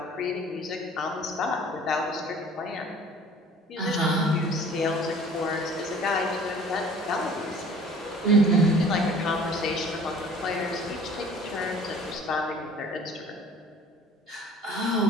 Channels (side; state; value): both; normal; correlation 0.49